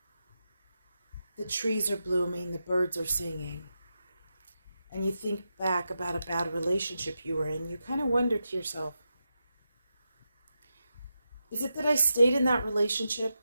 The trees are blooming. The birds are singing. And you think back about a bad relationship you were in. You kind of wonder to yourself, is it that I stayed in that relationship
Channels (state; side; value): inverted; both; correlation -0.88